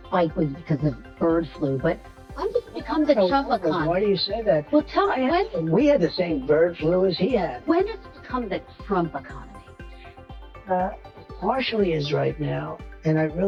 spike was because of bird flu, but when did it become the Trump Why economy? do you say that? Well, tell me, We had the same bird flu as he had. when did it become the Trump economy? Partially is right now, and I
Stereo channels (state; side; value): identical; both; correlation 1.00